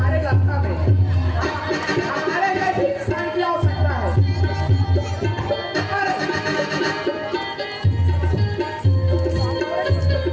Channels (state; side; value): identical; both; correlation 1.00